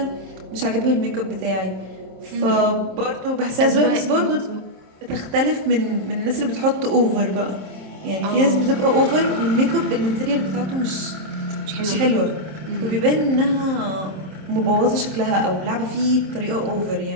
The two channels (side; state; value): left; late; 27 ms